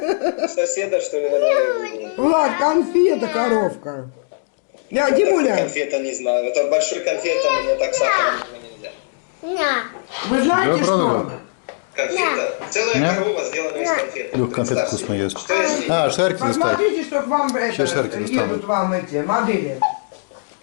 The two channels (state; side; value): silent; right; digital silence